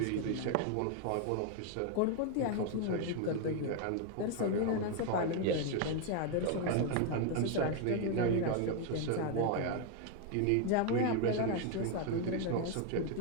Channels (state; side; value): different; both; correlation 0.00